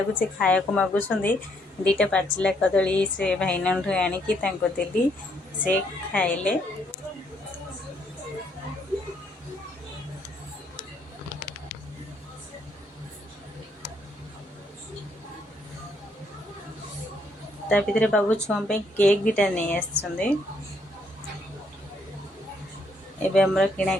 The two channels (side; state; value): both; normal; correlation 0.71